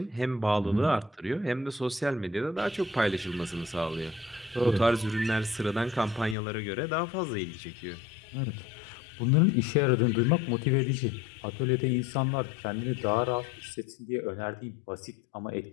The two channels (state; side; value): drops out; right; at 6.4 s